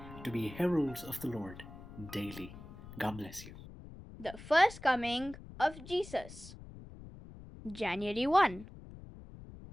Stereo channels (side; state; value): left; noise; rumble, 15 dB below the sound